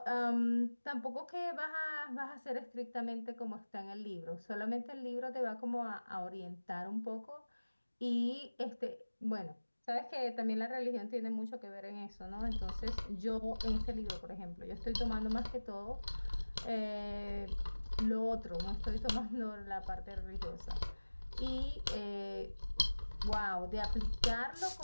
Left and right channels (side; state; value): both; inverted; correlation -1.00